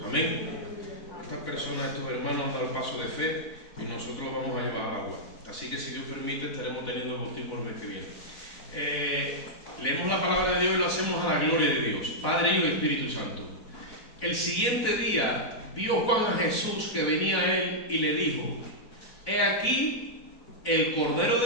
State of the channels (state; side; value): late; right; 4.0 ms